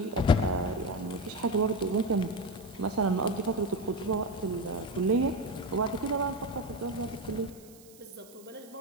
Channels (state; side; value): noise; right; hiss, 23 dB below the sound